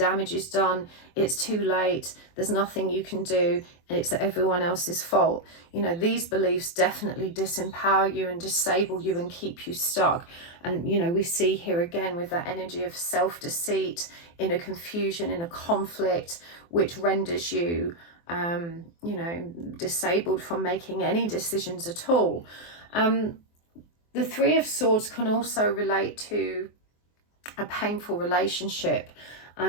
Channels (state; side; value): late; right; 24 ms